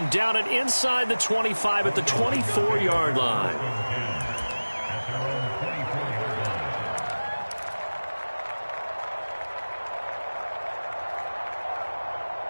down it inside the 25 at the 24-yard line.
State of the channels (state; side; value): inverted; both; correlation -1.00